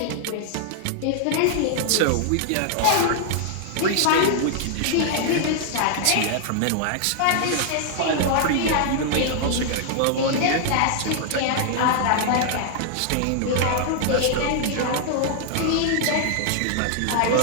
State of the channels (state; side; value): different; both; correlation 0.00